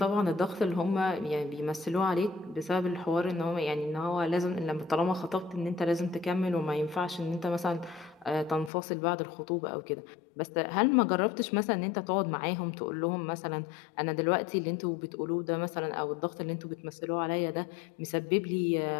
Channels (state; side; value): drops out; right; at 8.7 s